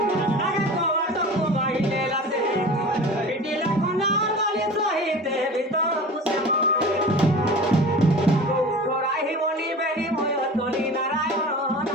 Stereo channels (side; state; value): both; normal; correlation 0.37